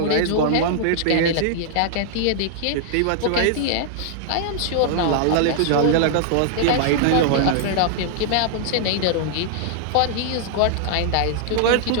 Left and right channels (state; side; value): different; both; correlation -0.01